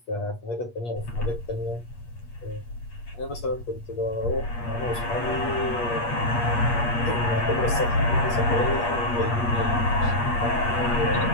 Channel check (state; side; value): late; right; 8.5 ms